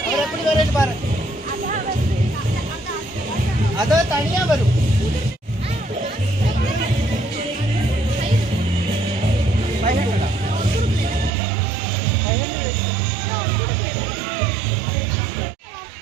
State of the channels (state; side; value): drops out; left; at 11.3 s